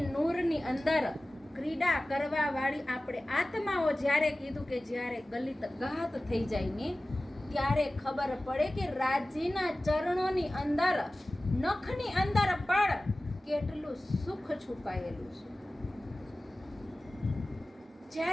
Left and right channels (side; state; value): both; normal; correlation 0.97